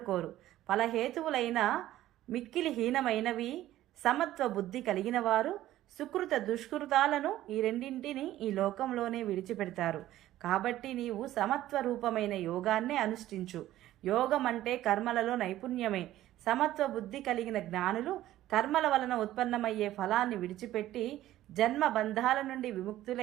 కోరు. ఫలహేతువులైన మిక్కిలి హీనమైనవి సమత్వ బుద్ధి కలిగిన వారు సుకృత దుష్కృతాలను ఈ రెండింటిని ఈ లోకంలోనే విడిచిపెడతారు. కాబట్టి నీవు సమత్వ రూపమైన యోగాన్నే అనుష్ఠించు. యోగం అంటే కర్మలలో నైపుణ్యమే. సమత్వ బుద్ధి కలిగిన జ్ఞానులు కర్మల వలన ఉత్పన్నమయ్యే ఫలాన్ని విడిచిపెట్టి జన్మ బంధాల నుండి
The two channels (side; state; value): left; quieter; 14.1 dB